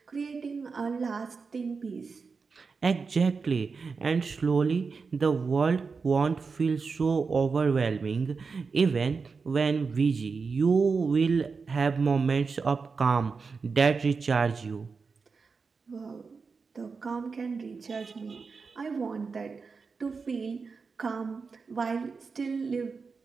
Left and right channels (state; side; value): quieter; left; 4.9 dB